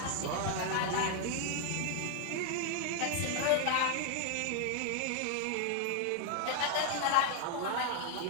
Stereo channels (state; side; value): different; both; correlation 0.00